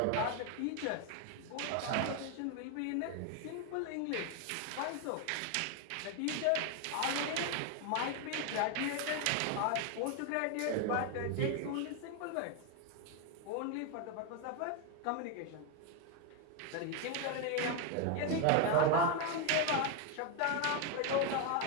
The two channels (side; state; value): both; different; correlation 0.01